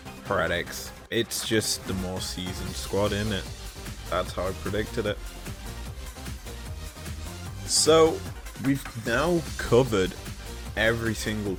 Heretics. It's just the more seasoned squad, isn't it? That's how I predicted it. So, we've now covered every single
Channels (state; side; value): identical; both; correlation 1.00